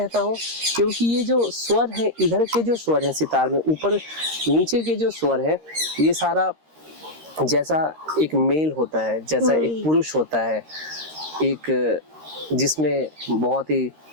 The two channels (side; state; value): left; late; 13 ms